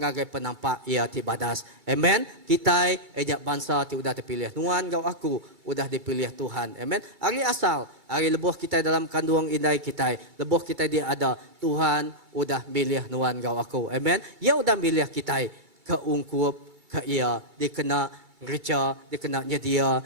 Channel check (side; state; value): left; late; 2.3 ms